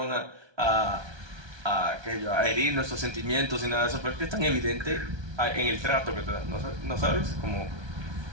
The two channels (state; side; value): late; left; 1.2 ms